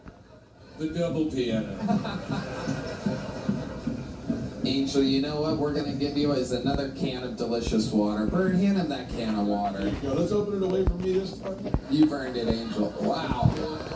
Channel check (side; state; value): both; identical; correlation 1.00